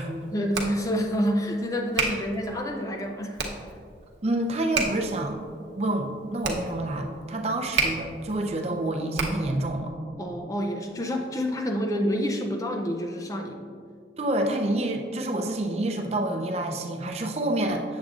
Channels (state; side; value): normal; both; correlation 0.53